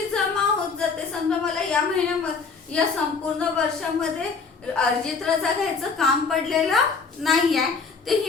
जमा होत जाते. समजा मला या महिन्यामध्ये या संपूर्ण वर्षामध्ये अर्जित रजा घ्यायचं काम पडलेलं नाहीये, तर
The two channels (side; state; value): right; quieter; 4.8 dB